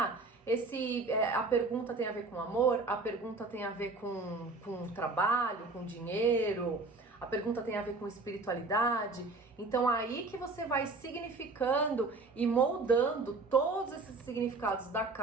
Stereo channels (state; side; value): quieter; left; 3.6 dB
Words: pergunta tem a ver com amor, a pergunta tem a ver com trabalho, com dinheiro, a pergunta tem a ver com espiritualidade. Então aí que você vai significando e moldando todos esses significados da